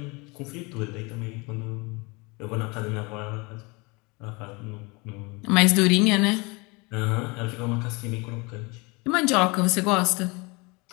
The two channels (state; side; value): quieter; right; 27.3 dB